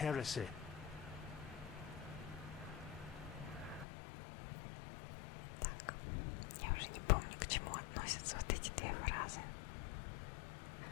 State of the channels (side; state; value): right; drops out; at 3.9 s